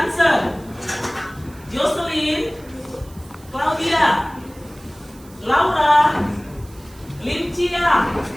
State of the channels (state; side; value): noise; right; hiss, 24 dB below the sound